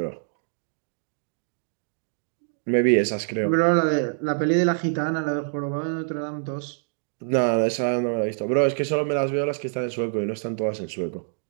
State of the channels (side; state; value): left; silent; digital silence